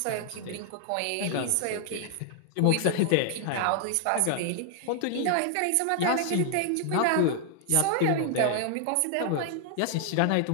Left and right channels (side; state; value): both; different; correlation 0.00